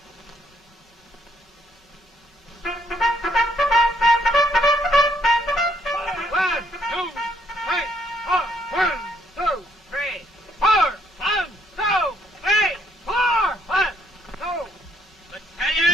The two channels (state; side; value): normal; both; correlation 0.70